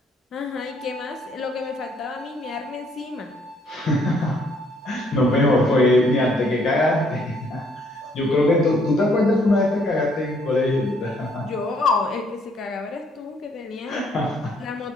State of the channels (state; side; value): normal; both; correlation 0.66